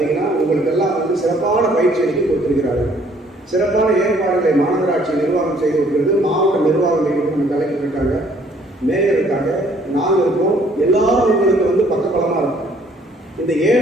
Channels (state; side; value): normal; both; correlation 0.61